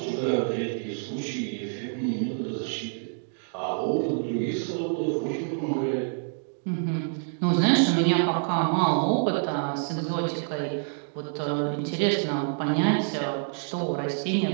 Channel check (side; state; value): left; silent; digital silence